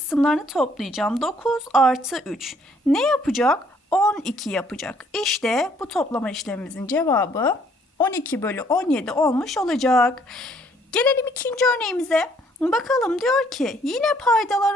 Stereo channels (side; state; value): both; normal; correlation 0.64